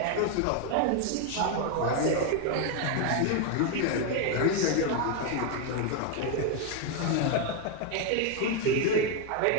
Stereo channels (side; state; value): both; different; correlation 0.01